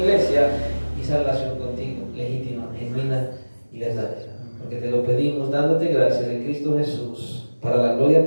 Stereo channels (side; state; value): both; inverted; correlation -1.00